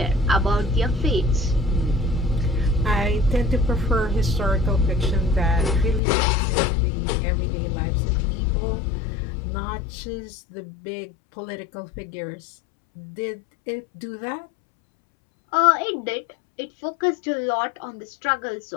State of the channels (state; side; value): drops out; right; at 6.0 s